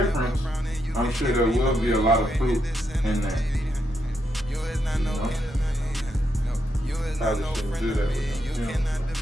I'm sure there will be a lot of fruit in that. You know? Probably shouldn't do that with them. You know?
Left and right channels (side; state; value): both; normal; correlation 0.81